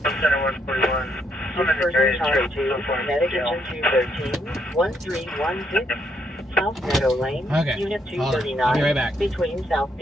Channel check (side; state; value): both; normal; correlation 0.74